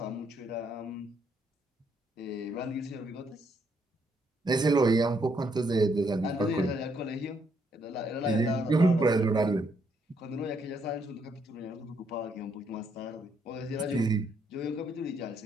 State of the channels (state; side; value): normal; both; correlation 0.73